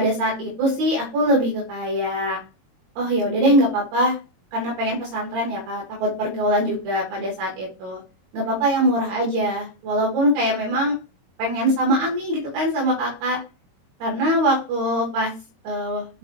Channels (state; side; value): late; left; 22 ms